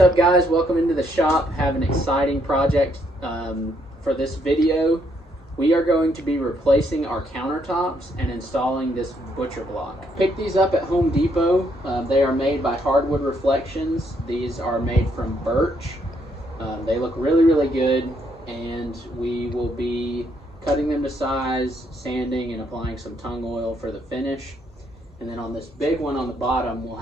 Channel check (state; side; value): normal; both; correlation 0.72